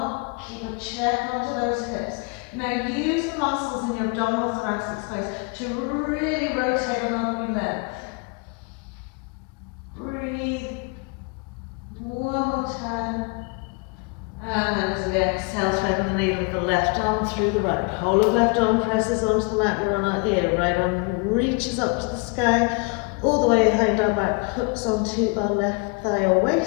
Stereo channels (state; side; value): quieter; right; 31.6 dB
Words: keep a check onto those hips. Now use the muscles in your abdominal thoracic space to really rotate along your length. Breathe. One more time. And then as we exhale, threading the needle of the left arm through the right. Whole of left arm presses onto the mat, we're on our ear. Right arm reaches up to the sky, all the way behind our back, hooks onto our left thigh or